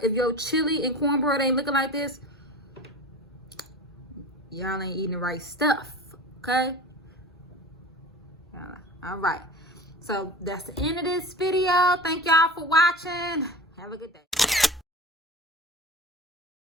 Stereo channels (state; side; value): normal; both; correlation 0.34